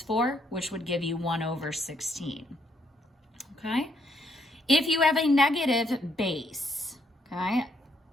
4, which would give you 1 over 16. Okay? If you have a negative base, okay,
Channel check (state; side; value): normal; both; correlation 0.73